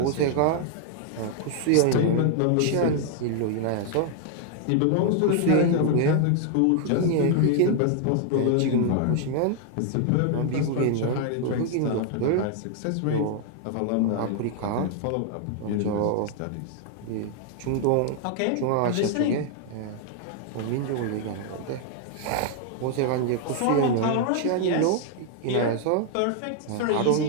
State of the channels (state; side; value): different; both; correlation 0.00